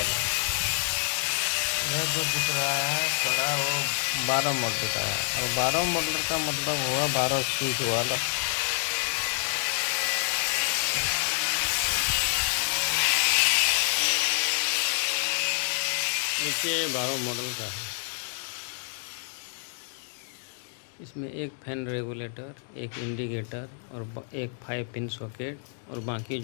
यह जो दिख रहा है बड़ा वो 12 मॉडल का है और 12 मॉडल का मतलब हुआ 12 स्विच वाला। नीचे 12 मॉडल का है। इसमें एक फैन रेगुलेटर, एक इंडिकेटर और एक 5 पिन सॉकेट और बाकी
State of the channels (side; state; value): right; silent; digital silence